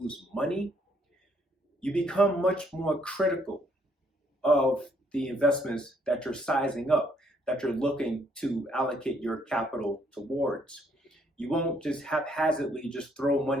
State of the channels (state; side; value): normal; both; correlation 0.69